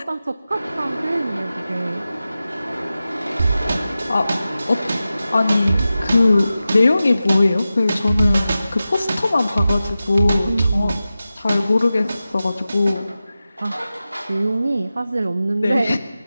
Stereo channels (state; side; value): inverted; both; correlation -0.94